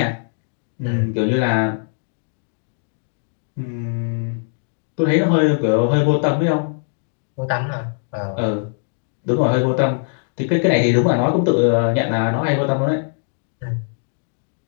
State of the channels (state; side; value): silent; right; digital silence